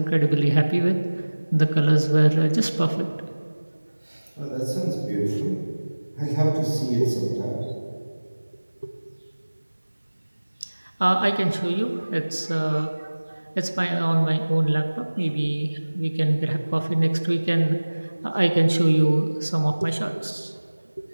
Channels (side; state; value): both; inverted; correlation -1.00